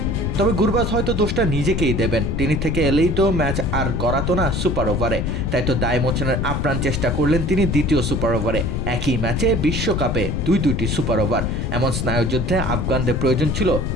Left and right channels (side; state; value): left; noise; rumble, 1 dB below the sound